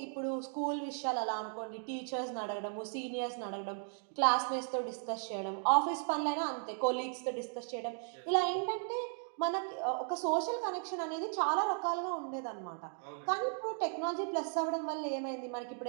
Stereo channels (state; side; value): silent; left; 54 dB below the other